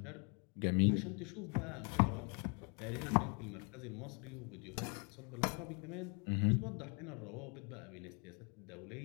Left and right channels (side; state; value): right; quieter; 35.7 dB